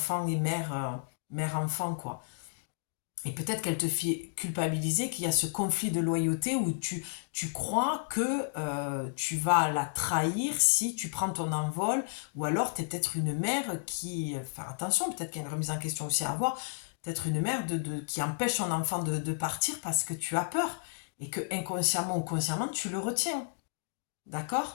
et mère, mère-enfant, quoi. Et peut-être qu'elle te fait culpabiliser, qu'il y a ce conflit de loyauté où tu crois que tu vas la trahir si tu prends ton envol, ou alors tu es peut-être une mère qui... Faire attention, peut-être qu'il y a une remise en question aussi à avoir, peut-être une mère qui empêche son enfant de partir parce que tu as peur. et que inconsciemment ou consciemment, tu le retiens.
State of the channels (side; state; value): right; silent; digital silence